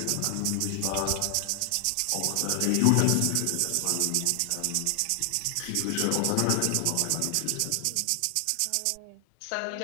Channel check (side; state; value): both; different; correlation 0.00